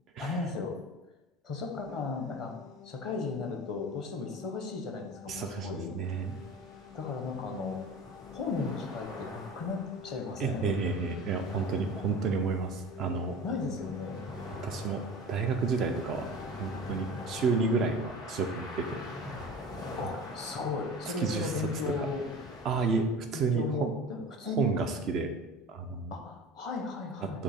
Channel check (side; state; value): both; normal; correlation 0.37